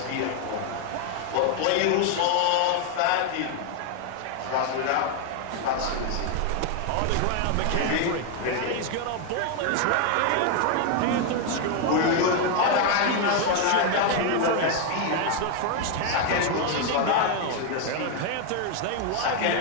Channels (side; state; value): both; different; correlation 0.01